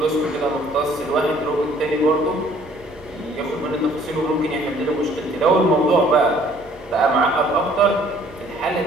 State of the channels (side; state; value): both; normal; correlation 0.58